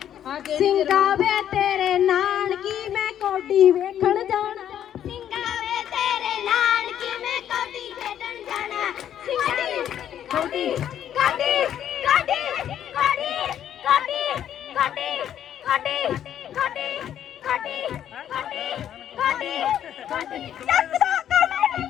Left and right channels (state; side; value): quieter; right; 10.3 dB